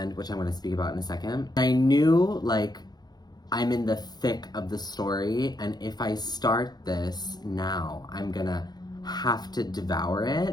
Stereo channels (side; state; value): right; late; 0.20 ms